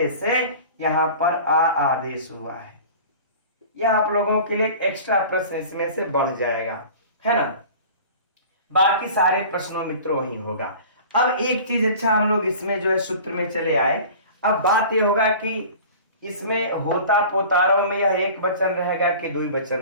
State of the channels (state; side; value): inverted; both; correlation -0.41